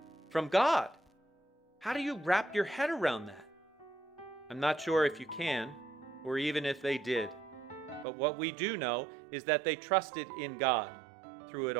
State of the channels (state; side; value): drops out; left; at 8.1 s